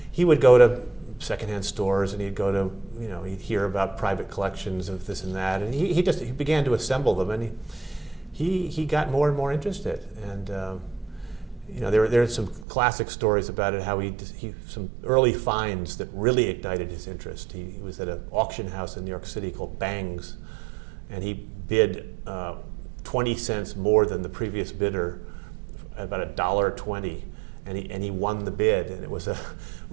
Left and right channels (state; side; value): drops out; left; at 12.7 s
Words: he would go to secondhand stores, and he'd go to, he'd hear about private collections of this and that, and he began to assemble them, and he got more and more interested, and there are some classic stories about it, how he some early finds that really ignited his interest. He was at an auction house in New York City called Bang's, and he bid 20 cents more than the previous bidder, about $1.20, and he won the bid, and it was